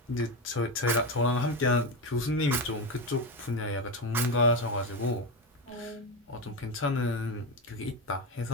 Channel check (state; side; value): normal; both; correlation 0.16